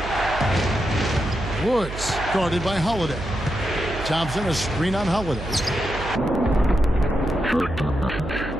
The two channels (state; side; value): noise; right; hum, 10 dB below the sound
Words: Woods guarded by Holiday. Thompson a screen on Holiday.